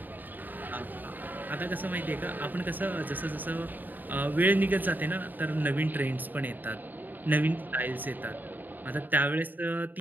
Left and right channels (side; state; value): left; late; 0.088 ms